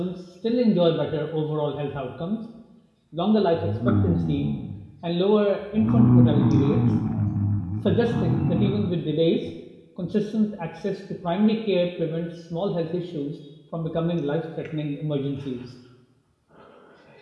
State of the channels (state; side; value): identical; both; correlation 1.00